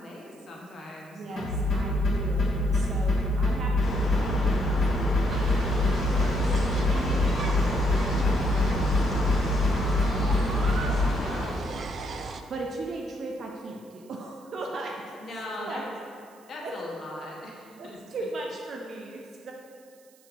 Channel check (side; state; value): right; noise; hiss, 29 dB below the sound